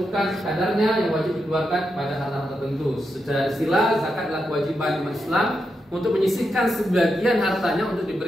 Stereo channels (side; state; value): both; normal; correlation 0.85